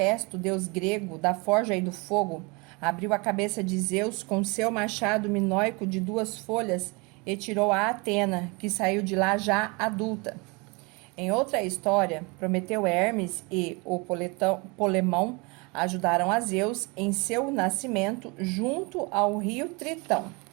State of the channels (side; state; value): left; quieter; 28.4 dB